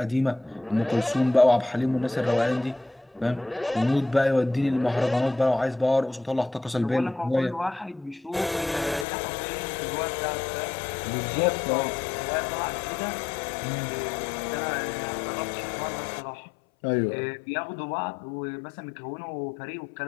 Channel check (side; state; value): right; drops out; at 9.1 s